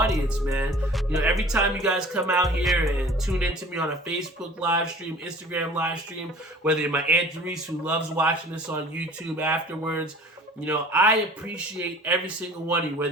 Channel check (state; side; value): normal; both; correlation 0.46